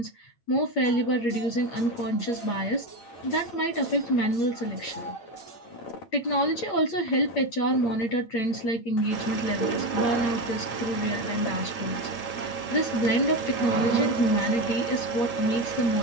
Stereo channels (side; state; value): right; late; 8.9 ms